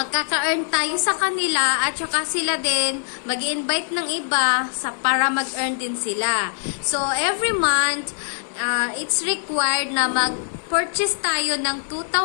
tayo sa kanila at saka sila din mag-invite ng iba para mag-earn din sila. So, every month, it's required na mag-purchase tayo ng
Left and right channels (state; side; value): silent; right; digital silence